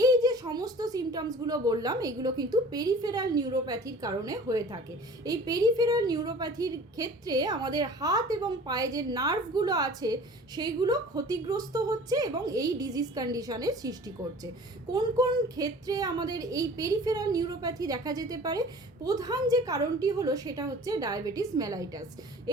এই যে সমস্ত সিমটমসগুলো বললাম, এগুলো কিন্তু পেরিফেরাল নিউরোপ্যাথির কারণে হয়ে থাকে। এই পেরিফেরাল নিউরোপ্যাথির ক্ষেত্রে আমাদের হাত এবং পায়ে যে নার্ভগুলো আছে সেইগুলো ক্ষতিগ্রস্ত হচ্ছে এবং এই ডিজিজ কন্ডিশনের সৃষ্টি করছে। কোন কোন ক্ষেত্রে আমাদের এই পেরিফেরাল নিউরোপ্যাথি দেখা যেতে পারে? প্রধান যে কারণটি হলো সেটা হচ্ছে ডায়াবেটিস মেলাইটাস।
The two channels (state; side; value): normal; both; correlation 0.45